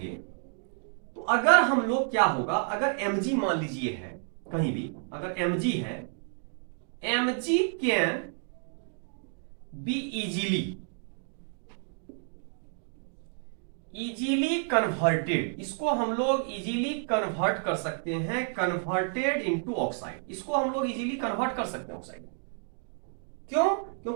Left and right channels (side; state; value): left; silent; 58 dB below the other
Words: तो अगर हम लोग क्या होगा, अगर Mg मान लीजिए है कहीं भी, अगर Mg है, Mg can be easily converted, इसको हम लोग इजीली कन्वर्ट कर सकते हैं, कन्वर्टेड इनटू ऑक्साइड, इसको हम लोग इजीली कन्वर्ट कर सकते हैं ऑक्साइड। क्यों?